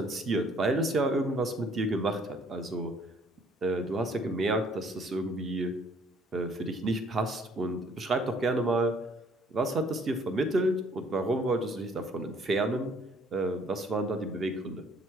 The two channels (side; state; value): both; normal; correlation 0.60